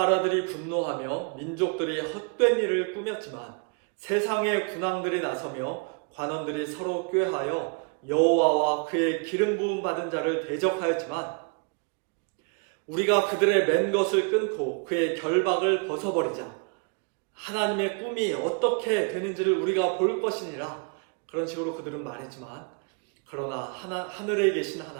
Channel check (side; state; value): left; quieter; 34.9 dB